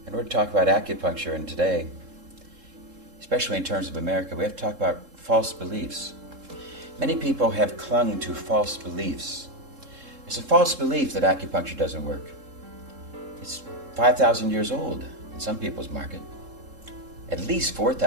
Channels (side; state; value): left; late; 3.7 ms